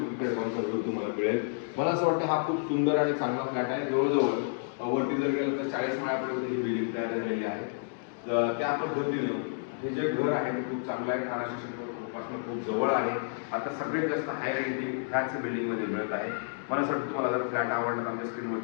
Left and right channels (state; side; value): silent; right; digital silence